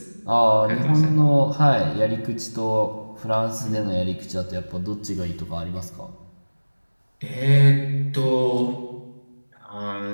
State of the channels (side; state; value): both; inverted; correlation -1.00